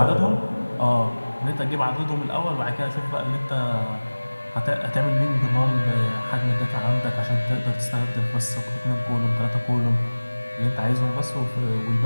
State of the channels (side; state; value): both; inverted; correlation -1.00